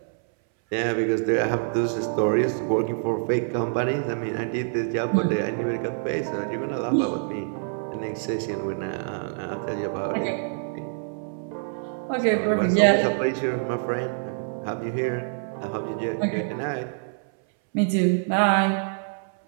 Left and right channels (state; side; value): silent; left; 61 dB below the other